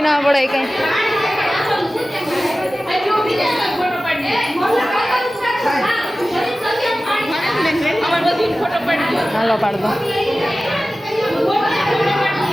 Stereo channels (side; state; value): both; normal; correlation 0.96